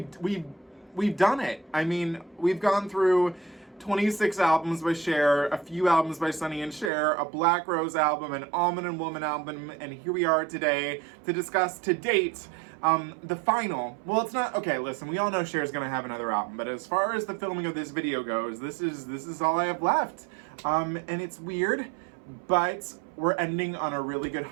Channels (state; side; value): drops out; left; at 6.9 s